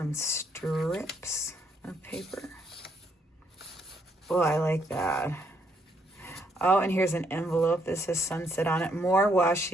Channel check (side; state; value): both; normal; correlation 0.72